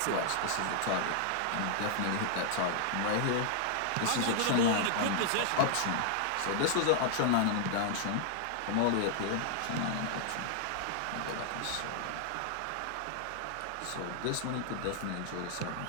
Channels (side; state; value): both; different; correlation -0.01